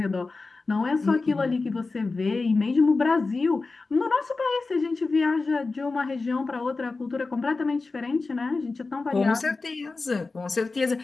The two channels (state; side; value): quieter; right; 3.8 dB